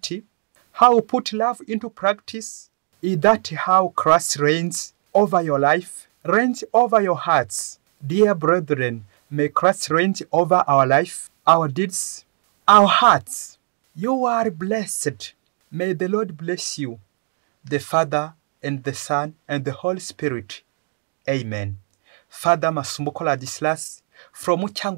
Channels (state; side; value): silent; left; 60 dB below the other